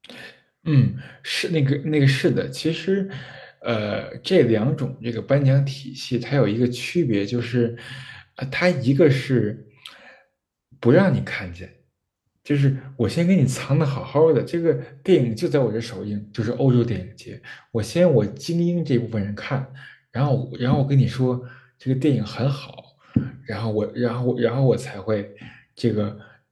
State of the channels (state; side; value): identical; both; correlation 1.00